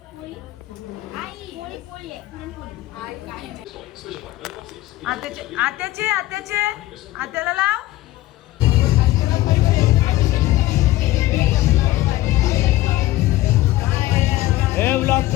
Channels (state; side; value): quieter; right; 16.7 dB